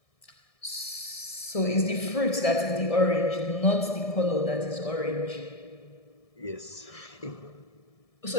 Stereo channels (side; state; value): right; late; 1.7 ms